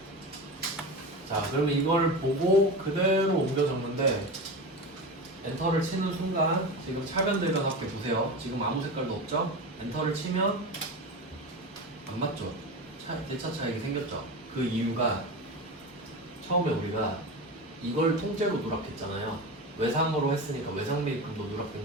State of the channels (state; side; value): normal; both; correlation 0.25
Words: 자, 그러면 이걸 보고 그대로 옮겨 적는데 엔터를 치는 순간 지금 차변들과 함께 보세요. 지금 아무 색깔도 없죠? 엔터를 치면 안 맞죠? 대차 차익이 생겼죠? 그 이유가 처음에 우리가 이걸 통째로 누락했잖아요. 외상으로 했으니까 외상 매입금도 누락된